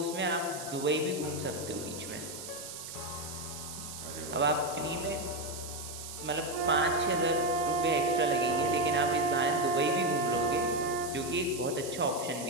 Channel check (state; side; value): noise; right; hiss, 10 dB below the sound